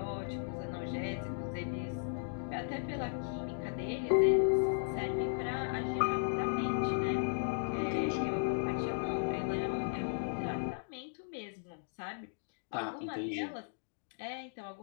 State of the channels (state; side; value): silent; right; digital silence